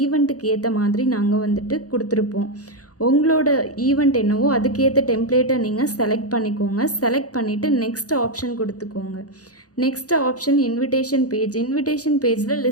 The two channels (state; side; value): late; right; 0.67 ms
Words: ஈவெண்ட்டுக்கு ஏற்ற மாதிரி நாங்கள் வந்துட்டு கொடுத்துருப்போம். உங்களோட ஈவெண்ட் என்னவோ அதுக்கேற்ற டெம்ப்ளேட்டை நீங்கள் செலக்ட் பண்ணிக்கோங்க. செலக்ட் பண்ணிவிட்டு நெக்ஸ்ட் ஆப்ஷன் கொடுத்துக்கோங்க. நெக்ஸ்ட் ஆப்ஷன் இன்விடேஷன் பேஜில்